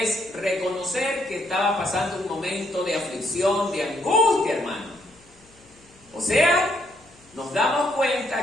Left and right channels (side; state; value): left; noise; hum, 29 dB below the sound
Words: reconocer que estaba pasando un momento de aflicción, de angustia, hermano. O sea, nos damos